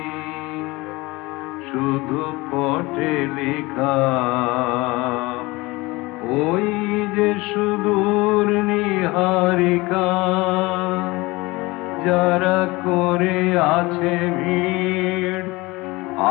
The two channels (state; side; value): quieter; right; 22.5 dB